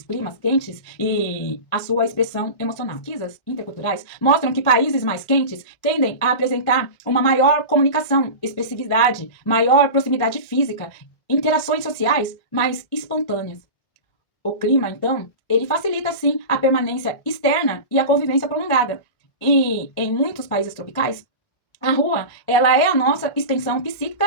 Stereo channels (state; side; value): late; right; 1.5 ms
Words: e a sua expressão emocional. Pesquisas interculturais mostram que países mais quentes tendem a apresentar uma maior comunicação, expressividade, maior proximidade física, interações sociais mais espontâneas. O clima, então, ele facilita, sim, a permanência externa e a convivência prolongada. E em muitos países tropicais, a rua, ela é a nossa extensão